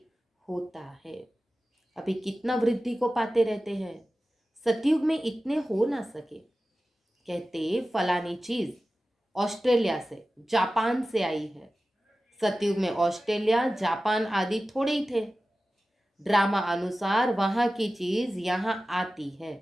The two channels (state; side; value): normal; both; correlation 0.95